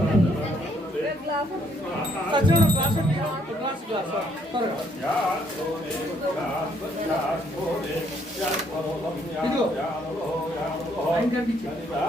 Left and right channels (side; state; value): both; normal; correlation 0.68